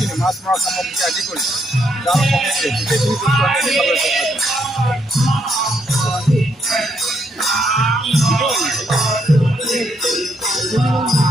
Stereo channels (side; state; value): both; normal; correlation 0.75